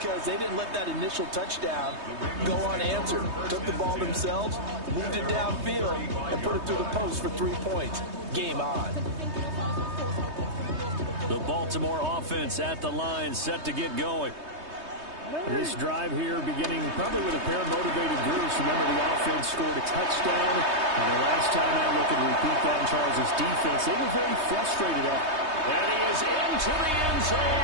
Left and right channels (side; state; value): left; late; 3.2 ms